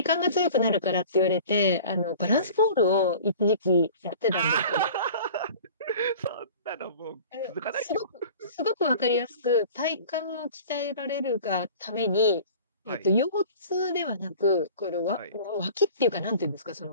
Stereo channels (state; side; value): inverted; both; correlation -0.43